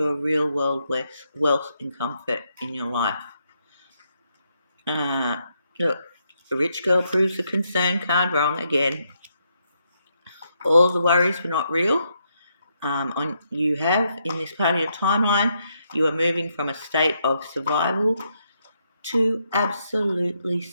a real world wealth and comfort in your life. Look, the rich girl proves the concern card wrong again. All the worries were not real. You have in this part of your timeline, you are moving from a state of survival to absolutely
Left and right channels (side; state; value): both; inverted; correlation -0.78